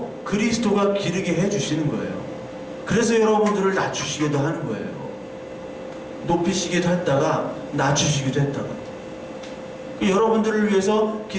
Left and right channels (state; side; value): identical; both; correlation 1.00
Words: 그리스도가 기르게 해주시는 거예요. 그래서 여러분들을 낮추시기도 하는 거예요. 높이시기도 했다가 낮추시기도 했다가. 여러분들을 위해서